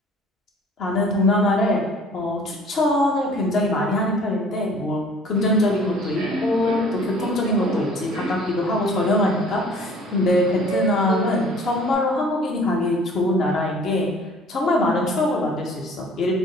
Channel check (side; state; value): both; normal; correlation 0.51